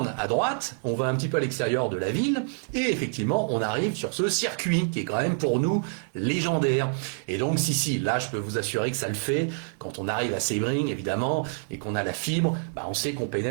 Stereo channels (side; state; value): left; silent; digital silence